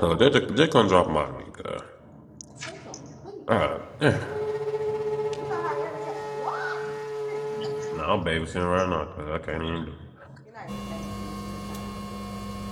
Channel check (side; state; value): both; identical; correlation 1.00